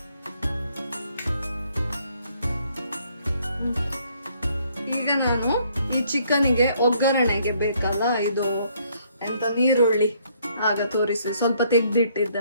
ಈಗ ನಾನು ಈ ಚಿಕನಿಗೆ ಒಗ್ಗರಣೆಗೆ ಬೇಕಲ್ಲ, ಇದು ಎಂತ ನೀರುಳ್ಳಿ ಆಗ ತೋರಿಸಿ ಸ್ವಲ್ಪ ತೆಗ್ದಿಟ್ಟಿದ್ದೆ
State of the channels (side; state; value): both; inverted; correlation -0.67